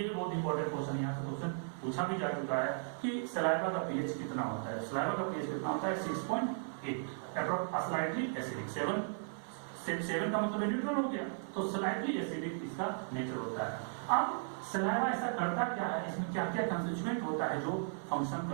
भी बहुत इंपॉर्टेंट क्वेश्चन यहाँ से क्वेश्चन पूछा भी जा चुका है कि सलाइवा का पीएच कितना होता है। सलाइवा का पीएच कितना होता है 6.8, अप्रोक्स स्लाइटली एसिडिक। 7 का मतलब न्यूट्रल हो गया, तो स्लाइटली एसिडिक इसका नेचर होता है। अब सलाइवा ऐसा करता क्या है, इसमें क्या क्या कंस्टिट्यूएंट होता है जो फंक्शन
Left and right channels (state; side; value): silent; left; 54 dB below the other